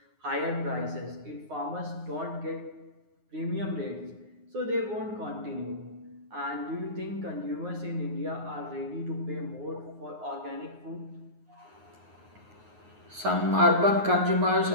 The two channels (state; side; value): late; left; 9.5 ms